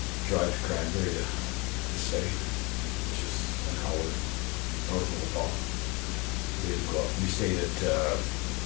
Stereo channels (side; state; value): right; quieter; 27.3 dB